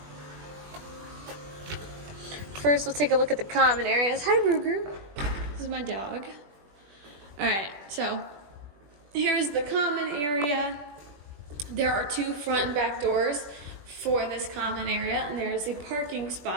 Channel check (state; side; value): late; left; 20 ms